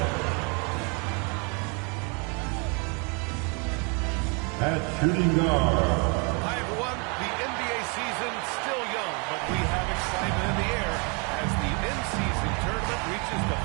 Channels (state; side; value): quieter; left; 33.3 dB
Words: At shooting guard. Hi, everyone. The NBA season still young, but we have excitement in the air as the in-season tournament reaches the